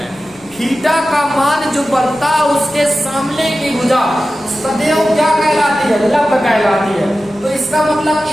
थीटा का मान जो बनता है उसके सामने की भुजा सदैव क्या कहलाती है, लंब कहलाती है। तो इसका मतलब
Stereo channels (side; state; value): left; noise; rumble, 29 dB below the sound